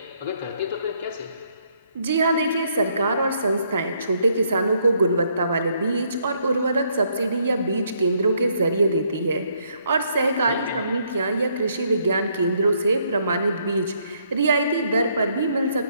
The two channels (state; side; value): inverted; both; correlation -0.71